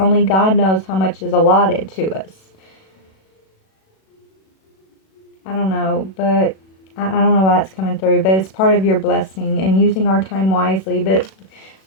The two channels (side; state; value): right; late; 37 ms